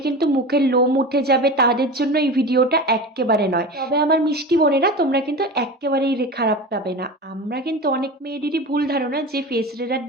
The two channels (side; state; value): both; normal; correlation 0.30